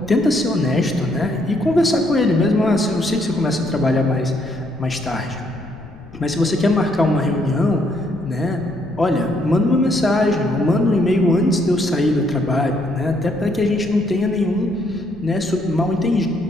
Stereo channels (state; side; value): noise; left; rumble, 19 dB below the sound